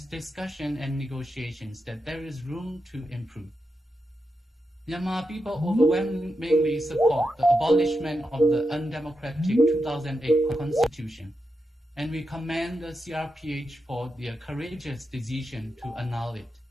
discussion, and negotiations, that there is room to improve. Myanmar people overwhelmingly support the abolishment of the undemocratic 2008 constitution, and we commend the CRPH for their courageous decision to annul it.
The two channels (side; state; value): both; normal; correlation 0.87